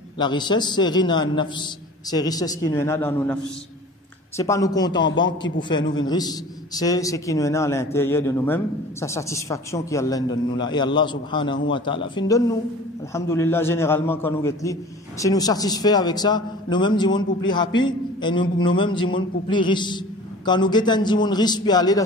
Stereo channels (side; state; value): both; normal; correlation 0.42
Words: la richesse, c'est ghina an-nafs. C'est richesse qui nous est dans nos nafs. C'est pas nos comptes en banque qui pour faire nous une riche, c'est ce qui nous est à l'intérieur de nous-mêmes, sa satisfaction qui Allah donne nous là. Et Allah subhanahu wa ta'ala fin donne nous. Alhamdulillah, généralement quand nous guettons, si nous satisfaits avec ça, nous-mêmes disons pour plus happy et nous-mêmes disons pour plus riche. Quand nous guettons disons riche puis aller dans